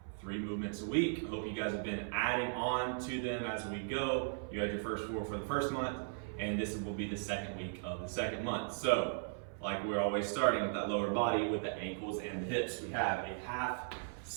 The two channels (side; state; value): left; silent; 53 dB below the other